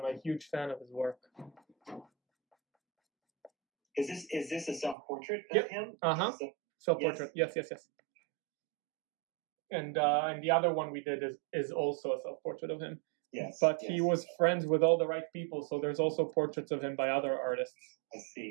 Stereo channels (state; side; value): drops out; left; at 5.0 s